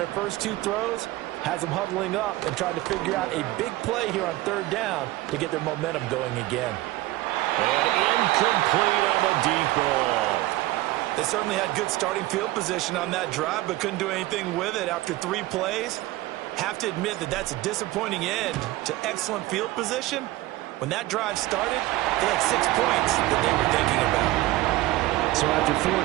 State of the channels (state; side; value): quieter; left; 17.8 dB